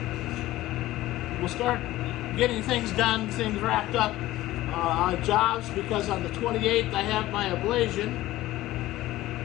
getting things done, things wrapped up on jobs, because on the 28th I have my ablation.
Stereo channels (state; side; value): quieter; right; 16.3 dB